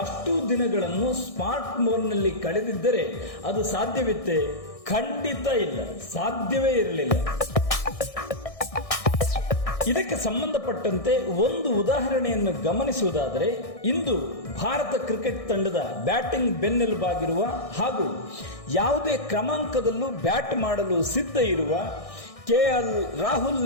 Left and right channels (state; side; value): late; right; 1.6 ms